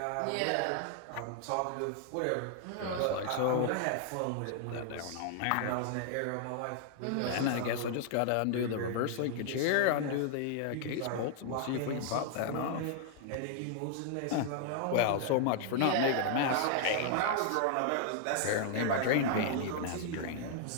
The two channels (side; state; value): both; different; correlation -0.01